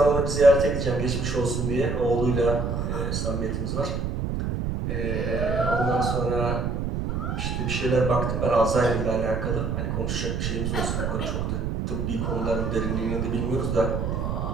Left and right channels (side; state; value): right; noise; rumble, 1 dB below the sound